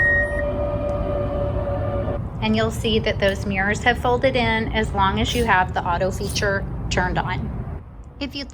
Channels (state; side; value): identical; both; correlation 1.00